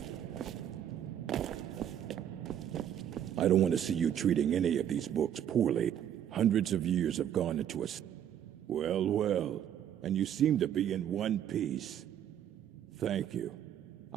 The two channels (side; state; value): left; quieter; 10.1 dB